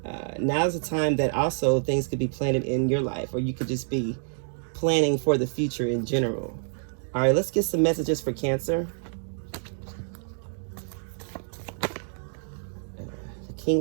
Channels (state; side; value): silent; left; 60 dB below the other